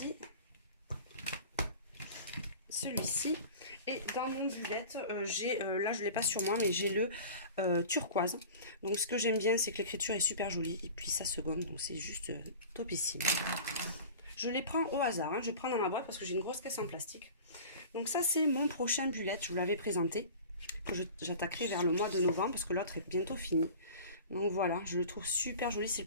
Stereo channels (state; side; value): inverted; both; correlation -0.38